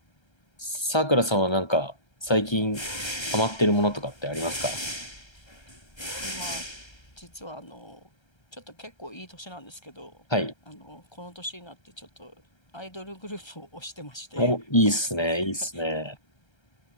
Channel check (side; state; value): right; late; 1.3 ms